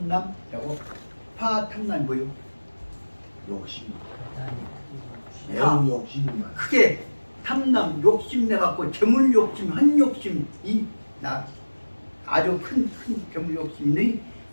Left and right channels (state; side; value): inverted; both; correlation -1.00